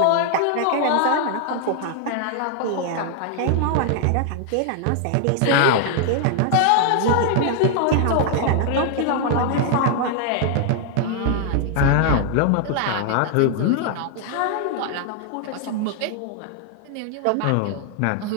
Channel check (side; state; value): both; different; correlation 0.00